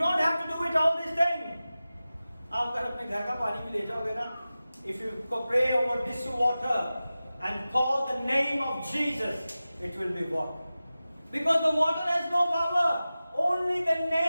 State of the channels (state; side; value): inverted; both; correlation -0.95